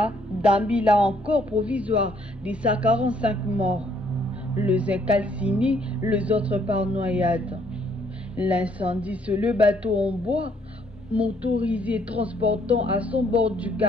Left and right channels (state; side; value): normal; both; correlation 0.67